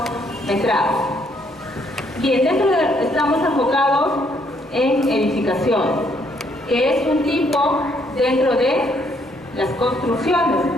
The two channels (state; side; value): normal; both; correlation 0.70